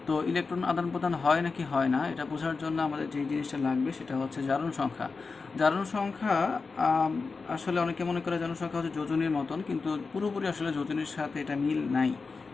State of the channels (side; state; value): right; quieter; 4.4 dB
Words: তো ইলেকট্রন আদান প্রদান হয় নাকি হয় না এটা বোঝার জন্য আমাদের যে জিনিসটা লাগবে সেটা হচ্ছে জারণ সংখ্যা। জারণ সংখ্যা আসলে অনেকে মনে করে জারণ সংখ্যা হচ্ছে যোজনীর মতন, কিন্তু পুরোপুরি আসলে যোজনীর সাথে এটা মিল নাই।